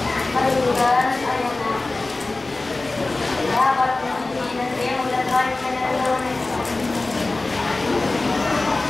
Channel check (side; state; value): right; quieter; 3.2 dB